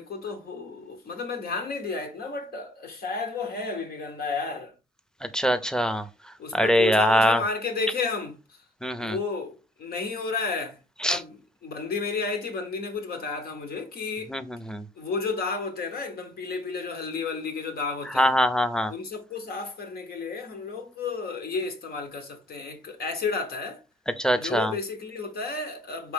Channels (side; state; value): both; normal; correlation 0.59